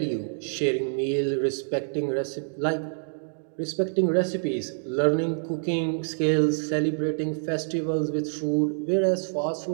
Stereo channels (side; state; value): left; silent; digital silence